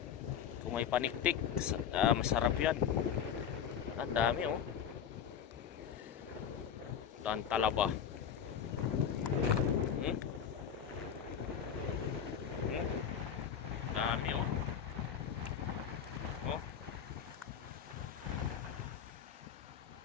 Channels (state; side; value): quieter; right; 8.2 dB